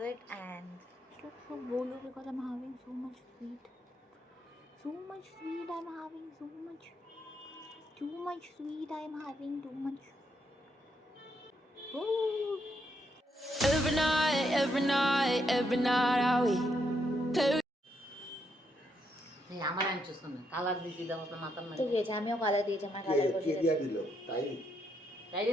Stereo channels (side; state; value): both; normal; correlation 0.78